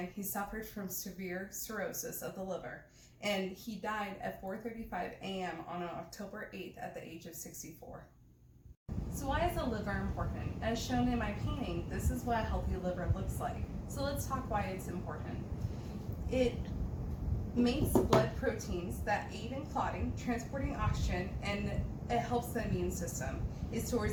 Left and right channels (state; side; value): identical; both; correlation 1.00